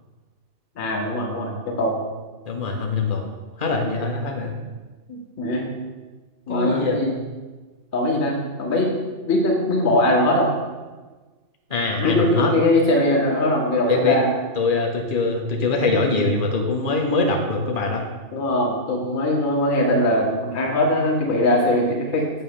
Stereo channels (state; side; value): late; left; 2.4 ms